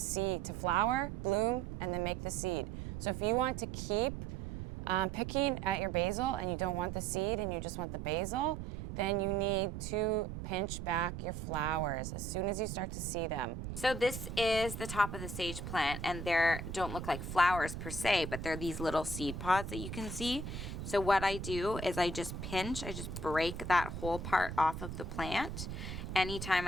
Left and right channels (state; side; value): noise; right; rumble, 7 dB below the sound